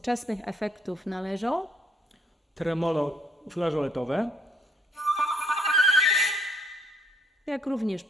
efektów należą Tremolo flażoletowe, jak również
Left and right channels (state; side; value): normal; both; correlation 0.67